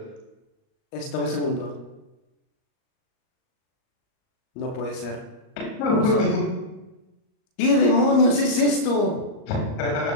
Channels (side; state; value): right; late; 38 ms